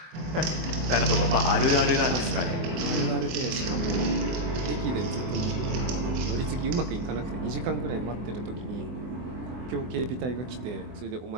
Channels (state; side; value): late; left; 24 ms